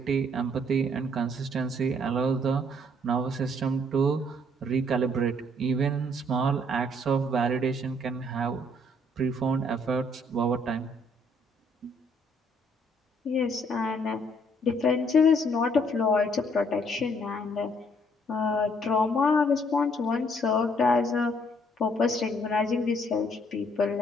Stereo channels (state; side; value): normal; both; correlation 0.66